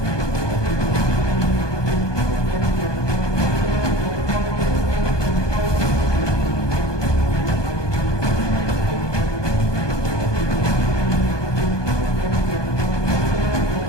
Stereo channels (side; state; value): right; late; 1.2 ms